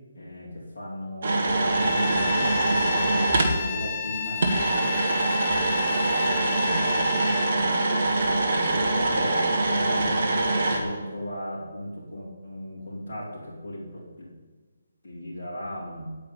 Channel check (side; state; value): both; inverted; correlation -0.84